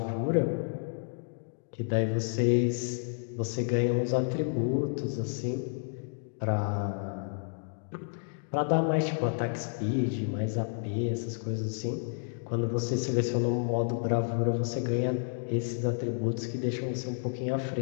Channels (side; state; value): right; silent; digital silence